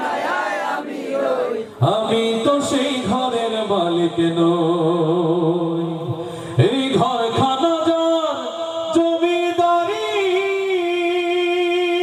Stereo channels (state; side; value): identical; both; correlation 1.00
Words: আমি তো সেই ঘরের মালিক নই এই ঘরখানা যার জমিদারি